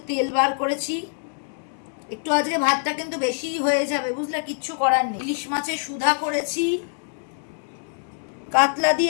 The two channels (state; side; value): silent; right; digital silence